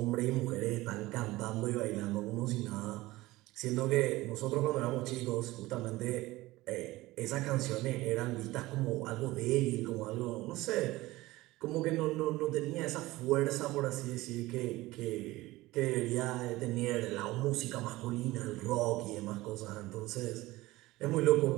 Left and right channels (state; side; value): quieter; left; 18.9 dB